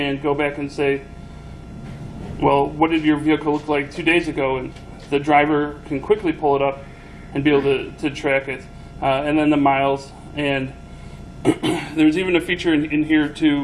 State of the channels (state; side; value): identical; both; correlation 1.00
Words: go back and say, well, what did your vehicle look like 2 days ago? And the driver can quickly pull it up and be able to track it. And then the miles. And there's even a feature in here